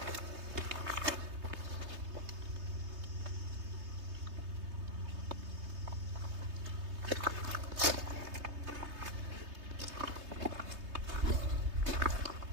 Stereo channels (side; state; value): left; late; 3.2 ms